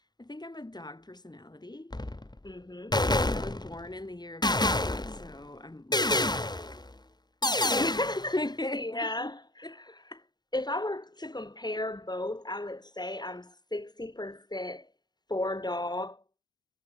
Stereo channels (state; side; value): late; right; 0.20 ms